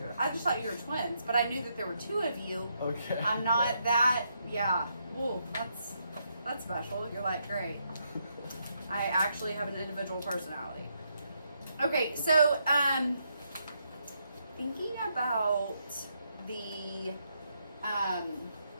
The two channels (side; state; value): both; inverted; correlation -0.78